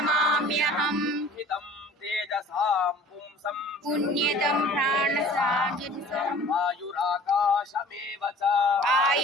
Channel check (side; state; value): both; normal; correlation 0.47